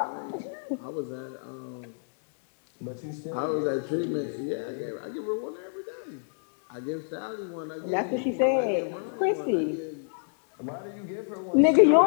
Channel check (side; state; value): right; silent; digital silence